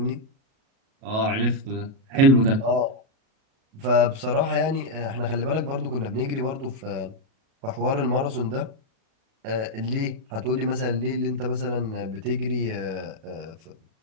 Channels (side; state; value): left; late; 37 ms